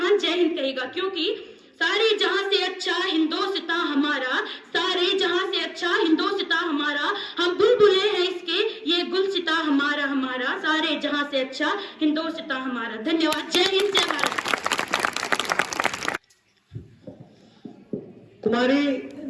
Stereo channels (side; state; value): both; identical; correlation 1.00